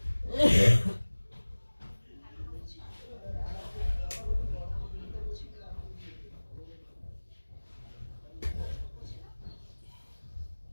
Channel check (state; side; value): inverted; both; correlation -1.00